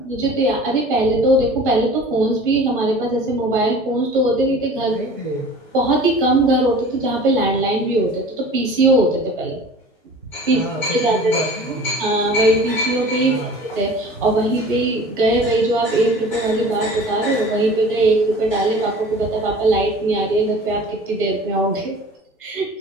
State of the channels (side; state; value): both; normal; correlation 0.43